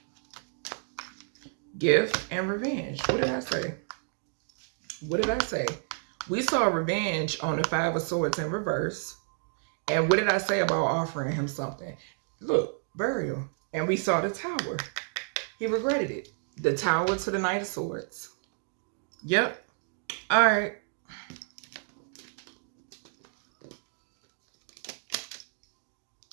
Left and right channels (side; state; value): left; silent; 57 dB below the other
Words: Gift and revenge. What did I say? What did I say? We saw revenge on the 5 of Swords in reverse. And what did I say about offering him something? Look, burial. And we saw the Tower. He regretted it. The Tower to the Knight of Swords. Yep. All right.